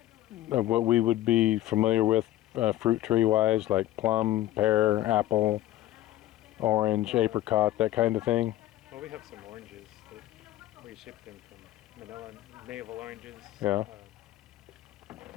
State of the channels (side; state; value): right; quieter; 14.5 dB